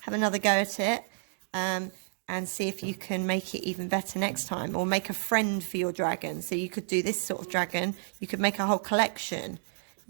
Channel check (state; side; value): silent; left; digital silence